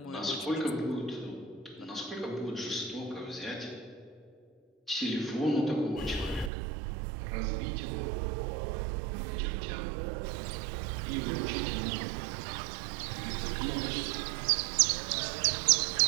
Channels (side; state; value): left; drops out; at 6.5 s